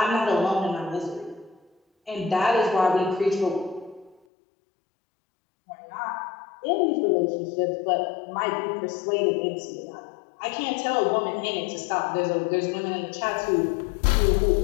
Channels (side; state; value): right; drops out; at 4.2 s